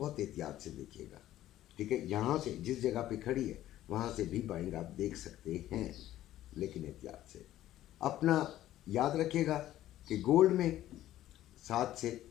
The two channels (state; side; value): quieter; right; 13.6 dB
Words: एहतियात से देखिएगा, ठीक है। यहाँ से जिस जगह पे खड़ी है वहाँ से भी बाइंग आप देख सकते हैं, लेकिन एहतियात से। अपना याद रखिएगा कि गोल्ड में 7 से